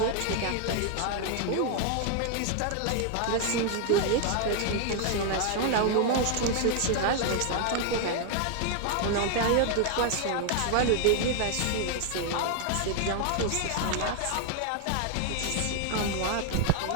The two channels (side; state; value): both; different; correlation 0.00